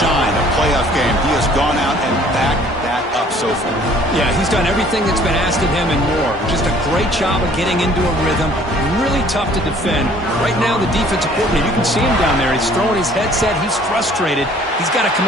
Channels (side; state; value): both; normal; correlation 0.56